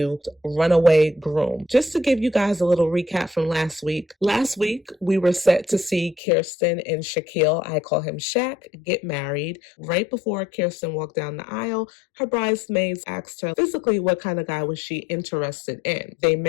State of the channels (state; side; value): drops out; right; at 6.2 s